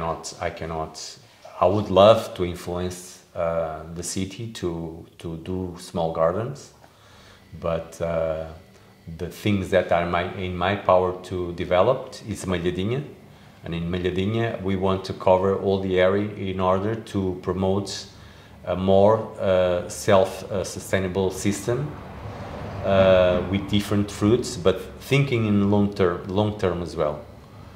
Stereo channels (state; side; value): identical; both; correlation 1.00